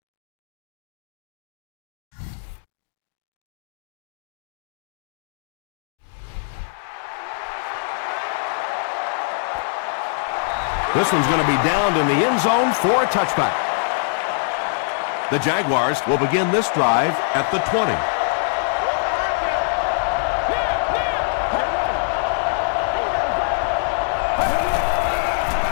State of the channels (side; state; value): right; silent; digital silence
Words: This one's going to be downed in the end zone for a touchback. The Jaguars will begin this drive at the 20.